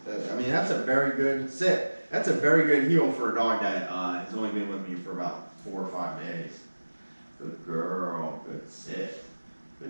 I mean, that's a very good sit. That's a very good heel for a dog that has only been with me for about 4 or 5 days. Good girl. Good sit.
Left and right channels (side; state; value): both; inverted; correlation -1.00